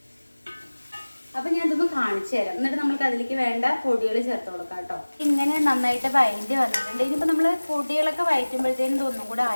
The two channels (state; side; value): inverted; both; correlation -1.00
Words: അപ്പം ഞാൻ ഇതൊന്ന് കാണിച്ചു തരാം. എന്നിട്ട് നമുക്ക് അതിലേക്ക് വേണ്ട പൊടികൾ ചേർത്ത് കൊടുക്കാം കേട്ടോ. ഇങ്ങനെ നന്നായിട്ട് വഴറ്റി വന്നിട്ടുണ്ട്. ഇനിയിപ്പോൾ നമ്മൾ പൊടികളൊക്കെ വഴറ്റുമ്പോഴത്തേനും ഇതൊന്നും കൂടെ